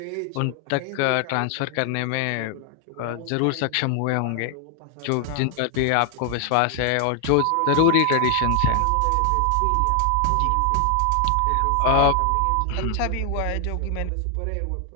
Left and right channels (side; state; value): both; different; correlation 0.00